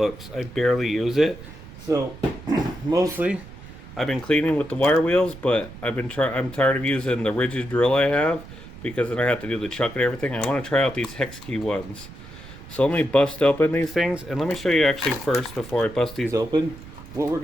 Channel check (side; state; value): right; noise; rumble, 16 dB below the sound